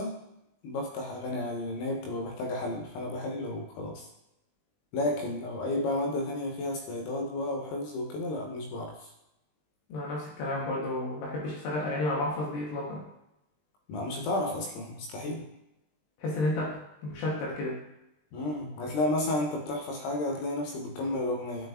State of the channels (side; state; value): right; late; 20 ms